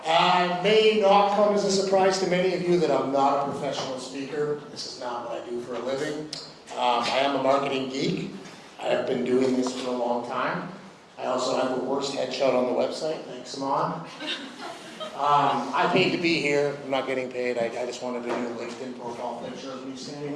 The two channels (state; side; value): identical; both; correlation 1.00